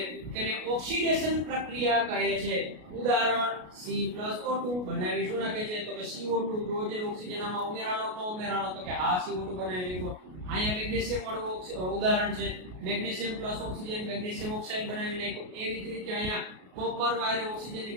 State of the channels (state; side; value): late; left; 33 ms